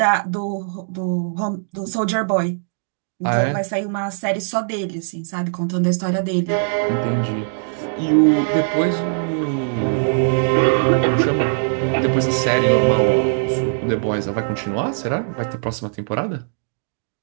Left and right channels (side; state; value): left; silent; digital silence